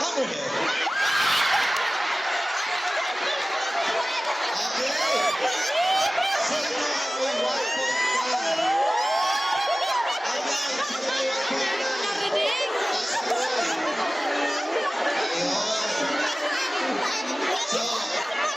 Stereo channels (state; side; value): normal; both; correlation 0.97